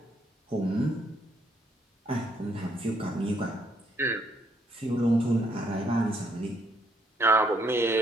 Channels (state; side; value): normal; both; correlation 0.71